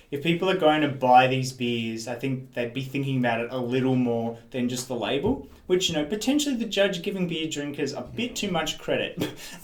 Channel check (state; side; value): identical; both; correlation 1.00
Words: if people are going to buy these beers, I think they'd be thinking about it a little more than just the label, which, potentially the judge giving beer drinkers a bit too much credit.